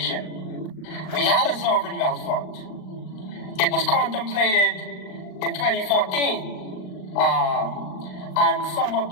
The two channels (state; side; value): late; right; 38 ms